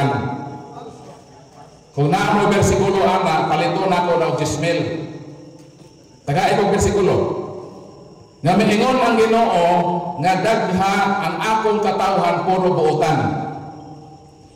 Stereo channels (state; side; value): identical; both; correlation 1.00